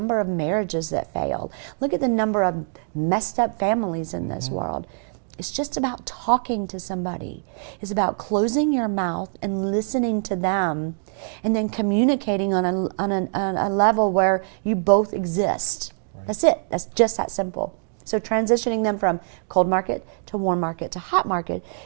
of marriages that failed. Look at the number of messed up families in this world. It's just about talking to somebody. It's about closing your mouth and listening to them and then communicating on a level where you both exist. Right. That's it. That's just that simple. So transitioning them from cold market to warm market to hot market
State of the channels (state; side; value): silent; left; digital silence